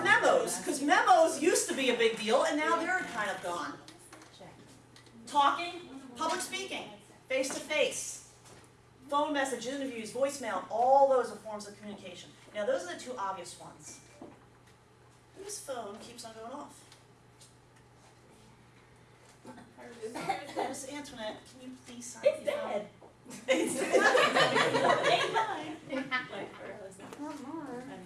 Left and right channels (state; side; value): identical; both; correlation 1.00